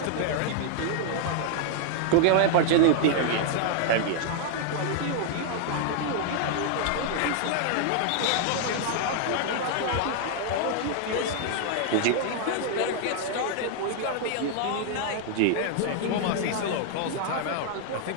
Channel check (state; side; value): different; both; correlation 0.00